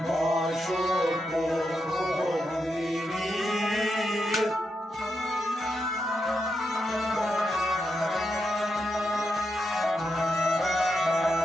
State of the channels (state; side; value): normal; both; correlation 0.84